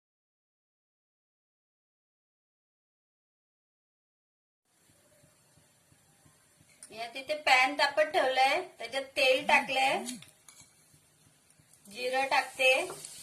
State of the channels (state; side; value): identical; both; correlation 1.00